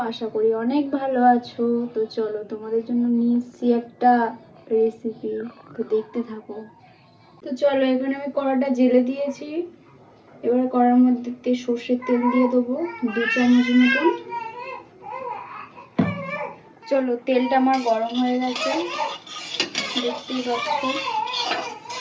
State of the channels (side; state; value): both; identical; correlation 1.00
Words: আশা করি অনেক ভালো আছো। তো চলো তোমাদের জন্য নিয়ে এসেছি একটা রেসিপি, তো দেখতে থাকো। তো চলো, এখানে আমি কড়াটা জেলে দিয়েছি। এবার কড়ার মধ্যে সর্ষের তেল দিয়ে দেবো 2 চামচ মতন। চলো, তেলটা আমার গরম হয়ে গেছে, দেখতেই পাচ্ছ।